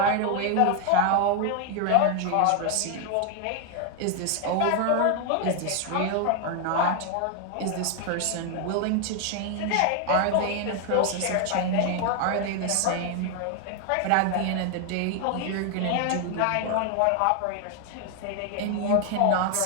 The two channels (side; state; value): both; different; correlation 0.01